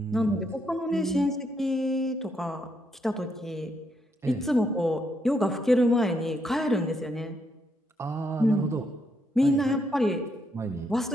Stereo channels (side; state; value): both; normal; correlation 0.76